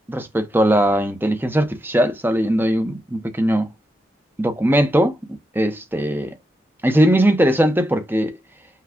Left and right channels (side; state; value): both; normal; correlation 0.86